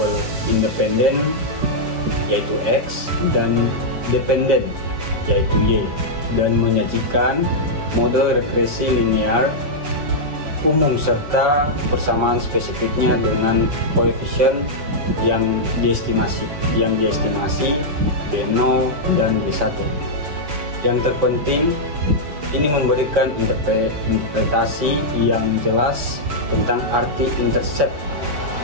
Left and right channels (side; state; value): left; late; 7.1 ms